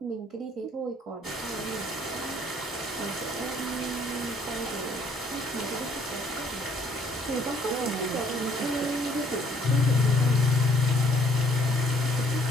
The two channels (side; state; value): both; normal; correlation 0.63